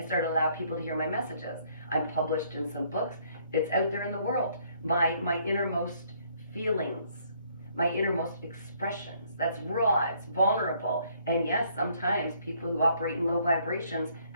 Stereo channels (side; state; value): both; inverted; correlation -0.66